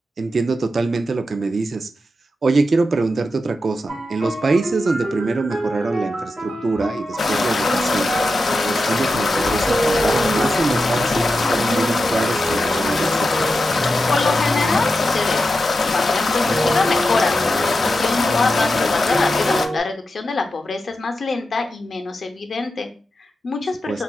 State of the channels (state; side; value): normal; both; correlation 0.89